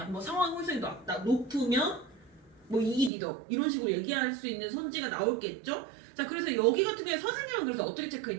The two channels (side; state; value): left; drops out; at 3.1 s